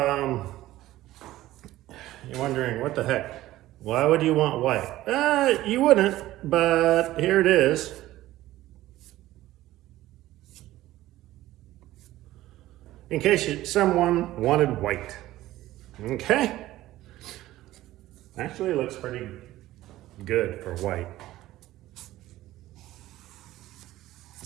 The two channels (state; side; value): quieter; left; 15.6 dB